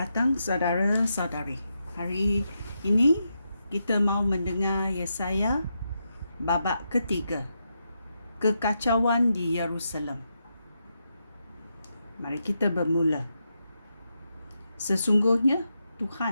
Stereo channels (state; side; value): inverted; both; correlation -0.84